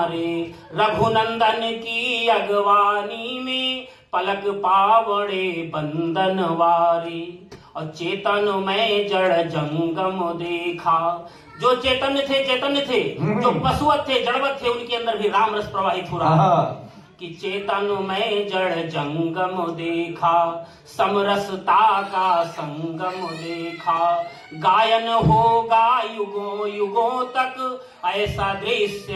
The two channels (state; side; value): identical; both; correlation 1.00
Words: रघुनंदन की अगवानी में पलक पावड़े बंदन वारे। और चेतन में जड़ जंगम देखा, जो चेतन थे जो पशुवत थे जड़वत थे उनके अंदर भी राम रस प्रवाहित हो रहा कि चेतन में जड़ जंगम देखा, समरसता का संगम देखा, गायन होगा युगों युगों तक ऐसा